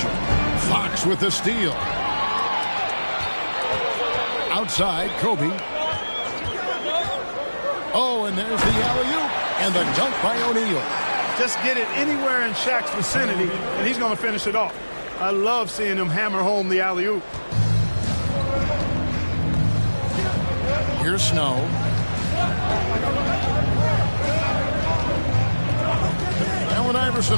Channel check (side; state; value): both; inverted; correlation -1.00